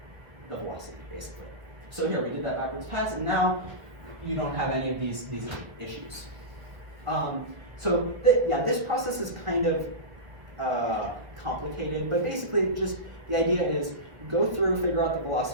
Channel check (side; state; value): left; late; 1.3 ms